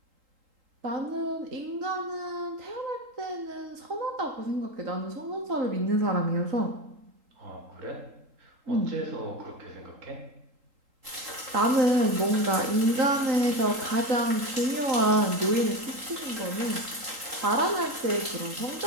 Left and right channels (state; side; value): late; left; 3.8 ms